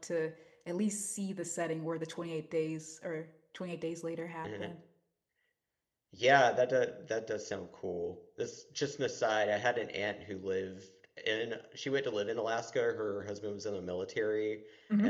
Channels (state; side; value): identical; both; correlation 1.00